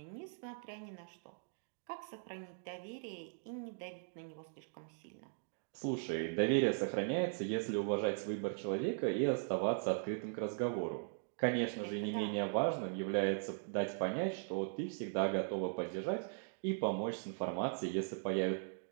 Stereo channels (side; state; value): left; silent; digital silence